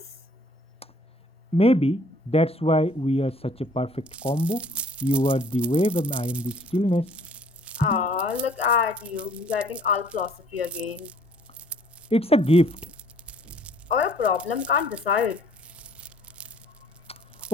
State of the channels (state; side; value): normal; both; correlation 0.58